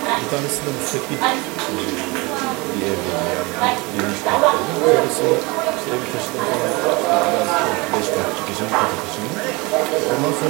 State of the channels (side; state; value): left; quieter; 25.6 dB